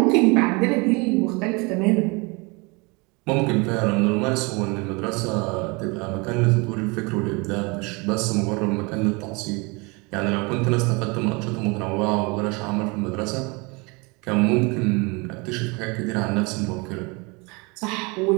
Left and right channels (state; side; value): quieter; left; 28.1 dB